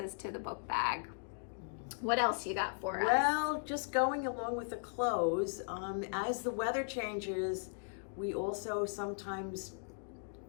to the book bag. What else you got for us? Well, just going along with the clothes, as the weather changes, we also sometimes,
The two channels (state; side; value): silent; right; digital silence